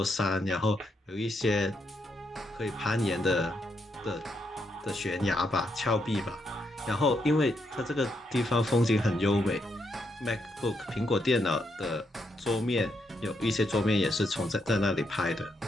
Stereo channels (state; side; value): normal; both; correlation 0.79